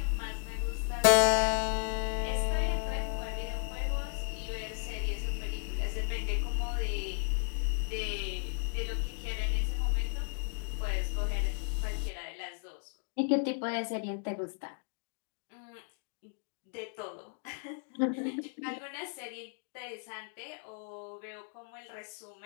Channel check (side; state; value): right; silent; 55 dB below the other